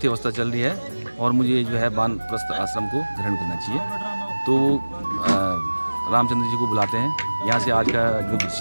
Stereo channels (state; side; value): inverted; both; correlation -1.00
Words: अवस्था चल रही है और मुझे जो है वानप्रस्थ आश्रम को ग्रहण करना चाहिए। तो रामचंद्र जी को बुलाते हैं, यहाँ से आज का जो